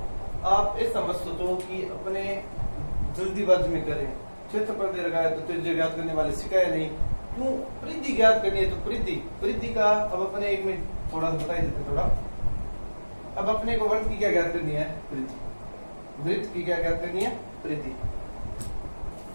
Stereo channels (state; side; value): inverted; both; correlation -1.00